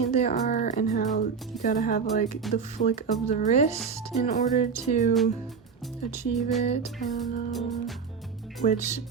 they are and how you gotta have like the flick of the wrist in order to achieve it. I don't know. Which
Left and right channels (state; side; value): quieter; left; 5.8 dB